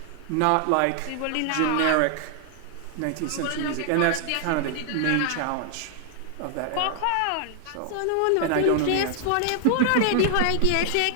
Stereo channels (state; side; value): different; both; correlation 0.00